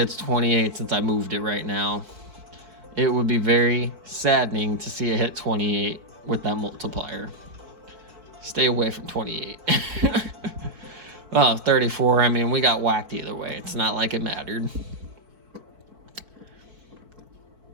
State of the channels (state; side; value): late; left; 4.5 ms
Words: 28 since I moved it right now. It would be very saddening to see it hit 28 with that multiplier. Stay away from 28. Oh, 34. I mean, we got whacked either way. It's not like it mattered.